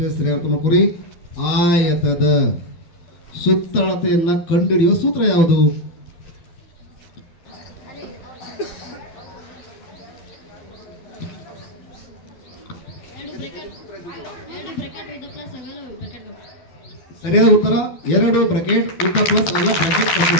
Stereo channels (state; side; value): late; right; 12 ms